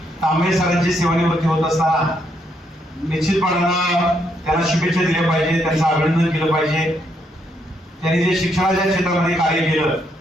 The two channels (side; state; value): both; normal; correlation 0.75